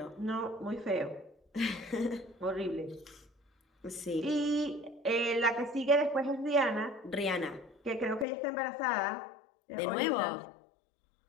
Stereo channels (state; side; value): drops out; right; at 8.2 s